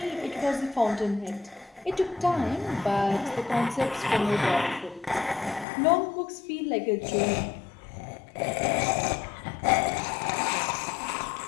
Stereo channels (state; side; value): drops out; right; at 5.7 s